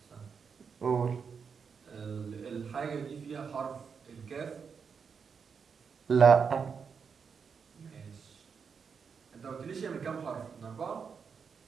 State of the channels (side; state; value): left; quieter; 6.1 dB